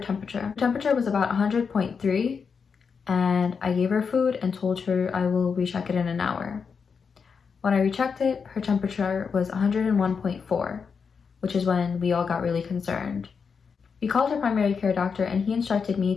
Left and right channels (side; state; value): right; quieter; 5.8 dB